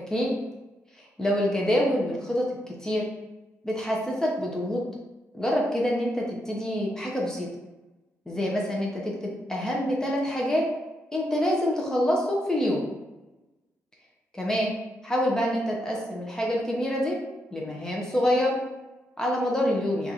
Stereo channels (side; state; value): both; normal; correlation 0.81